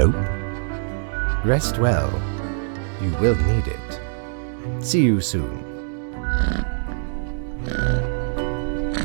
Rest well. You will need it. See you soon.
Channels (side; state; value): left; silent; digital silence